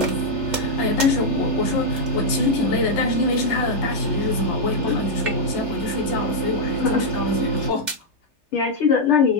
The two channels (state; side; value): late; right; 3.3 ms